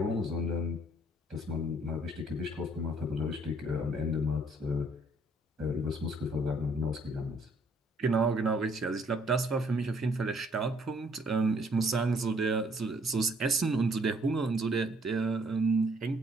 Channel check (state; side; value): normal; both; correlation 0.65